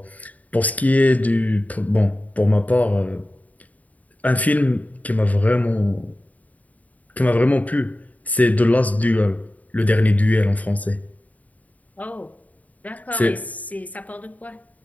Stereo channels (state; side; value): late; right; 0.073 ms